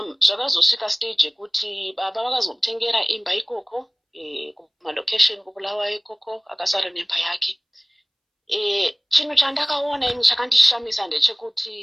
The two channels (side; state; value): both; identical; correlation 1.00